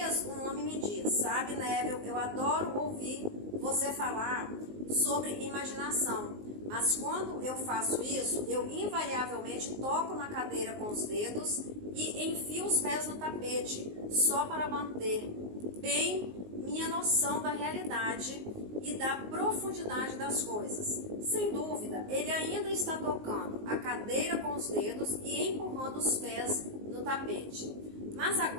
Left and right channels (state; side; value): late; left; 19 ms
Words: um homem me disse: sabe, Neville, eu adoro ouvir você falar sobre imaginação. Mas quando eu faço isso, eu invariavelmente toco na cadeira com os dedos e enfio os pés no tapete, só para manter bem minha noção da realidade e da profundidade das coisas. Sem dúvida, ele ainda está tocando a cadeira com os dedos e empurrando os pés no tapete. Mas